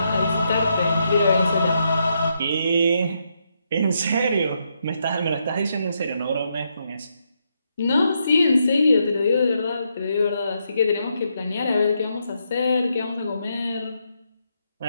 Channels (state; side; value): inverted; both; correlation -0.79